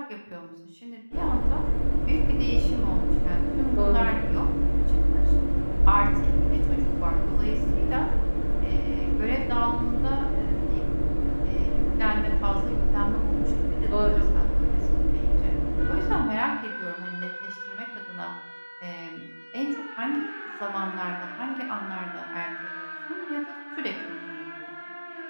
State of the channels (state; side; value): inverted; both; correlation -1.00